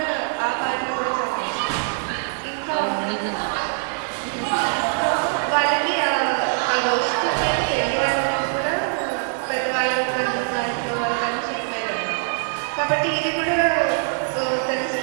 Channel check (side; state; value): left; silent; 63 dB below the other